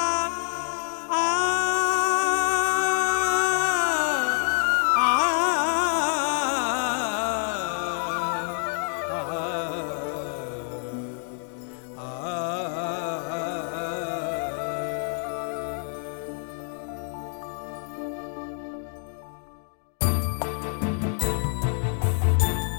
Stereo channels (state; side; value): silent; right; 60 dB below the other